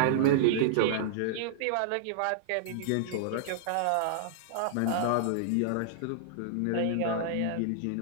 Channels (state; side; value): different; both; correlation -0.01